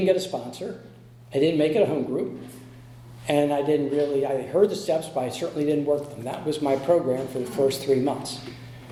get a sponsor. I didn't make it a home group. And I heard the steps, but I certainly didn't work them. That was my program for the first 3 months.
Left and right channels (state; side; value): identical; both; correlation 1.00